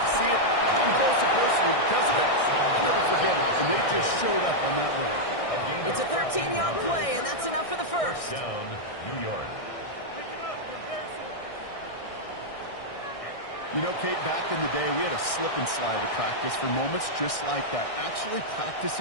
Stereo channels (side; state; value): right; late; 1.6 ms